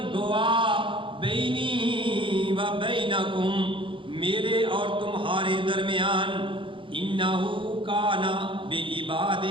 گواہ بینی و بینکم میرے اور تمہارے درمیان انہو کان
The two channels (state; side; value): late; left; 0.25 ms